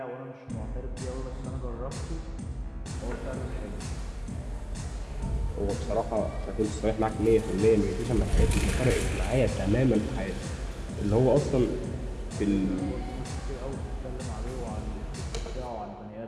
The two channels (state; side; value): identical; both; correlation 1.00